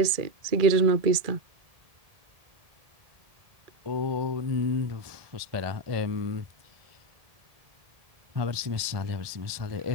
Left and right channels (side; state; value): left; late; 1.7 ms